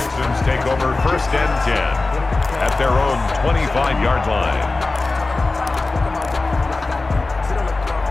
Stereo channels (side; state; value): right; quieter; 3.4 dB